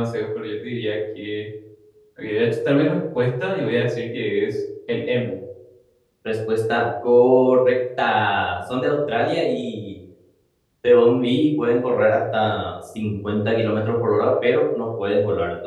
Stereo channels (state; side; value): identical; both; correlation 1.00